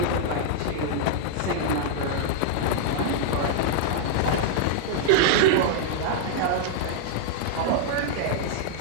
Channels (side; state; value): both; different; correlation -0.01